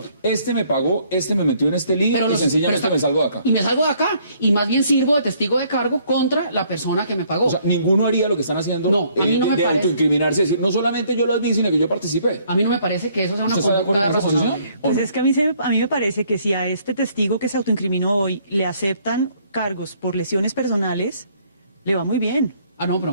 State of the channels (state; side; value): inverted; both; correlation -0.64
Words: Este me pagó, este me metió en este lío y sencillamente me salgo de acá. Y me salgo de acá. Y más bien sirvo de testigo de cargo contra la persona que me pagó. O sea, ninguno haría lo que están haciendo a mí no me de parece. autoincriminarse, decir, no solamente yo las vi, sino que yo participé. A mí no me parece que eso sea una conducta razonable. Pues es que a mí me parece que si a este testigo que se autoincriminó hoy le aceptan cargos por lesiones personales, le va muy bien. Ah, no,